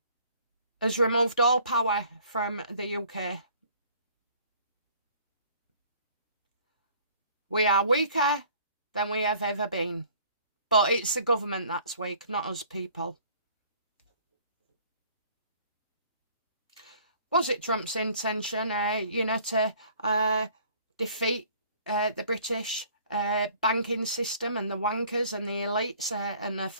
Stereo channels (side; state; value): both; inverted; correlation -0.55